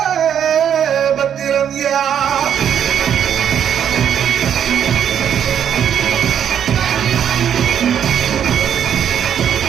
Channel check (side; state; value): left; quieter; 9.0 dB